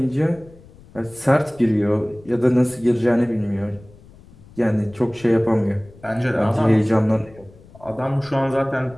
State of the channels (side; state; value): left; noise; rumble, 23 dB below the sound